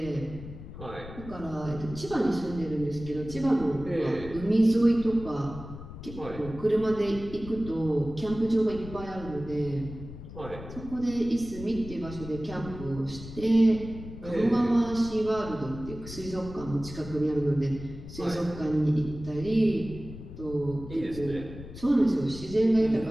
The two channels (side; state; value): left; noise; rumble, 13 dB below the sound